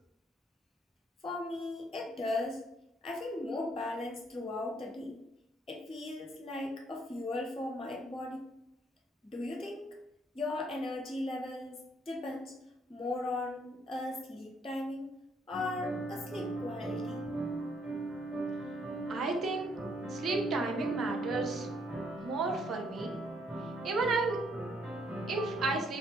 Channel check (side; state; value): both; normal; correlation 0.69